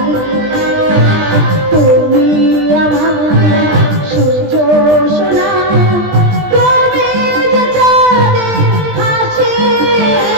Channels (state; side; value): late; left; 20 ms